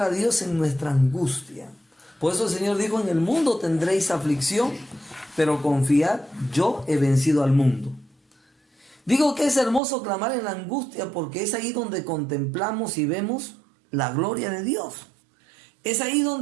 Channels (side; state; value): left; drops out; at 9.8 s